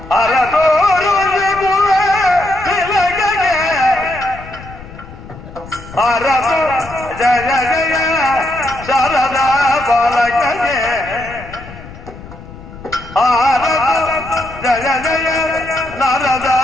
ಜಯ ಜಯ ಶಾರದಾ ಬಾಲಕಗೆ ಜಯ ಜಯ ನಾರದ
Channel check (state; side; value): noise; left; rumble, 16 dB below the sound